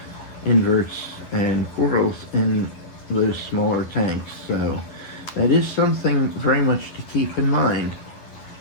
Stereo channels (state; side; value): late; right; 11 ms